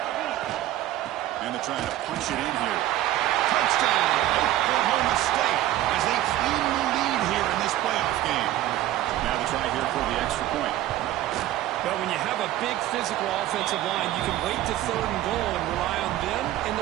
And they're trying to punch it in here. Touchdown, Oklahoma State, as they claim the lead here in this playoff game. Now they try here for the extra point. But when you have a big physical offensive line, you can wait to third and goal and rely on them and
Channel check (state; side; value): quieter; left; 14.1 dB